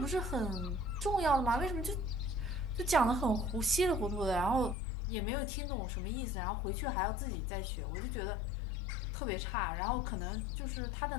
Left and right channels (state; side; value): drops out; right; at 4.8 s